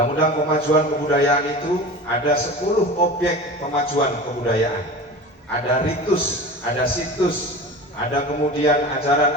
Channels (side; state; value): both; normal; correlation 0.34